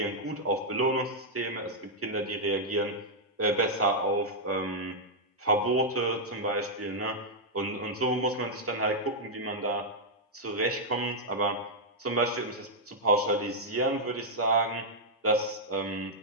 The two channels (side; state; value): both; normal; correlation -0.05